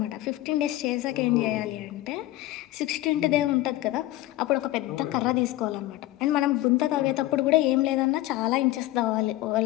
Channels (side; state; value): right; quieter; 16.5 dB